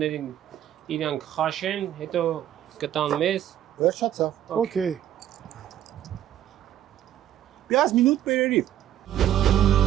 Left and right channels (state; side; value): quieter; left; 11.5 dB